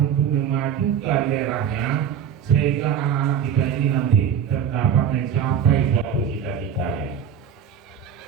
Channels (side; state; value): left; quieter; 8.2 dB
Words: untuk memajukan daerahnya sehingga anak-anak kita ini nanti terdapat mencapai suatu cita-citanya.